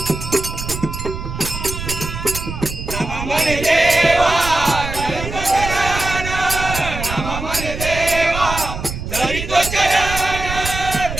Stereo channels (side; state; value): right; noise; rumble, 7 dB below the sound